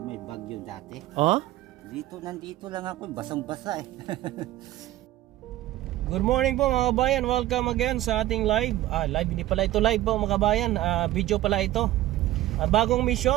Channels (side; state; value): left; quieter; 15.2 dB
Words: bagyo dati? Ha? Nandito lang ako, basang-basa eh. Good morning po mga kabayan, welcome again sa ating live. Live, hindi pala ito live po mga kabayan, video pala ito. Bagong